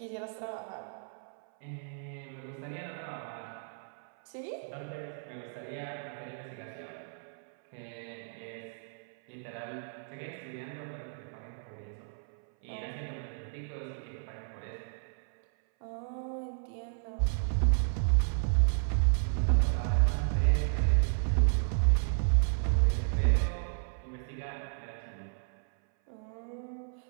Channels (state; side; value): silent; left; 56 dB below the other